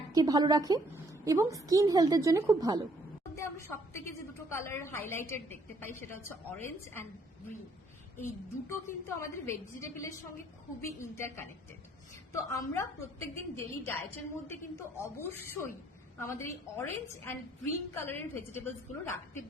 ভালো রাখে এবং স্কিন হেলথের জন্য খুব ভালো। আমরা সব থেকে যে দুটো কালার হাইলাইটেড দেখতে পাই সেটা হচ্ছে অরেঞ্জ অ্যান্ড গ্রিন। এই দুটো কিন্তু আমাদের ভেজিটেবলের সঙ্গে খুবই ইন্টারকানেক্টেড। তো আমরা প্রত্যেকদিন ডেইলি ডায়েটের মধ্যে কিন্তু অবশ্যই আমাদের এই অরেঞ্জ অ্যান্ড গ্রিন কালারের ভেজিটেবলস গুলো রাখতে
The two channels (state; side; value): normal; both; correlation 0.65